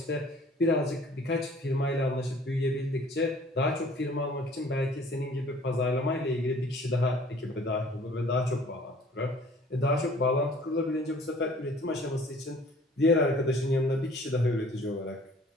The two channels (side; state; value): both; normal; correlation 0.53